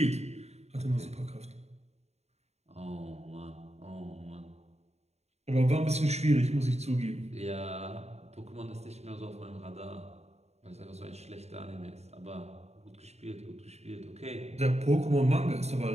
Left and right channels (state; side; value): late; left; 0.31 ms